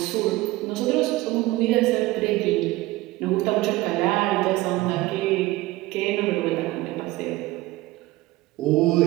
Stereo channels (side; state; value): left; quieter; 18.6 dB